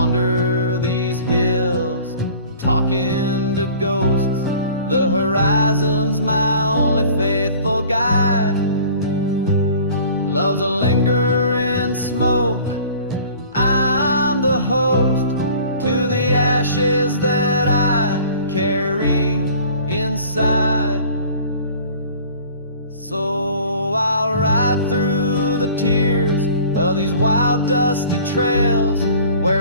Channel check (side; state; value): both; inverted; correlation -0.47